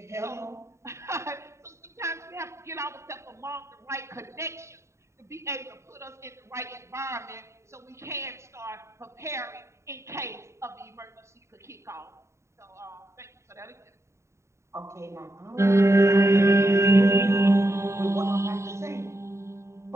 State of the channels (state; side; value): late; left; 0.14 ms